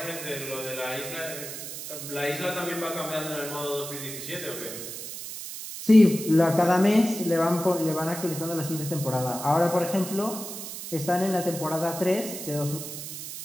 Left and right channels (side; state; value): right; noise; hiss, 9 dB below the sound